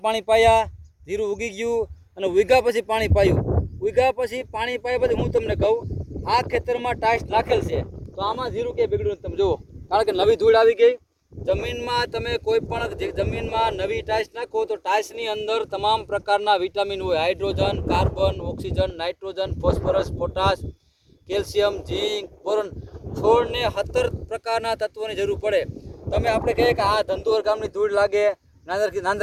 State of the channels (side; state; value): both; identical; correlation 1.00